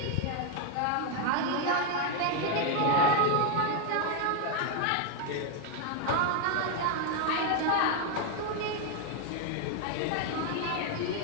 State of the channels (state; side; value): different; both; correlation 0.01